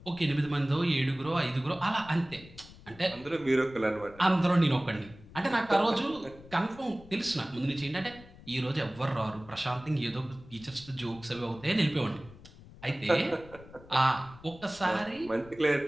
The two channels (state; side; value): noise; left; rumble, 20 dB below the sound